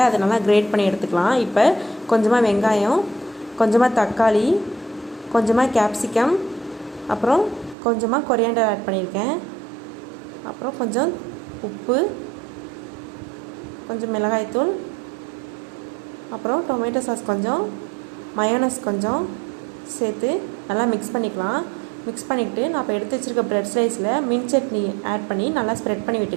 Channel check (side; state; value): left; drops out; at 7.8 s